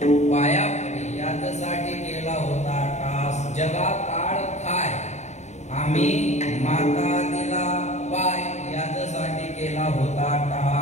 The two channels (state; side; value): late; right; 0.33 ms